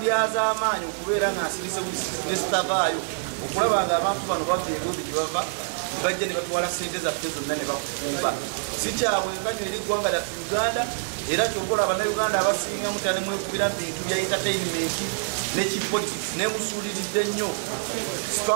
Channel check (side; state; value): left; silent; 57 dB below the other